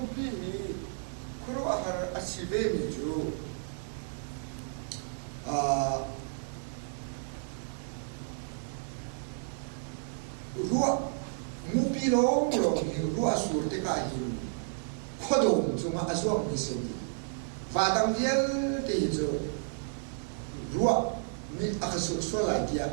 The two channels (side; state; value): left; silent; digital silence